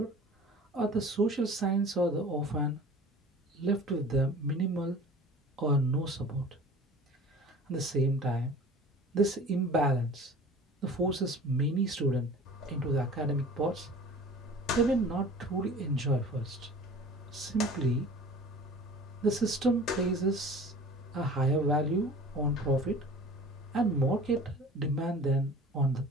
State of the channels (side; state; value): both; normal; correlation 0.43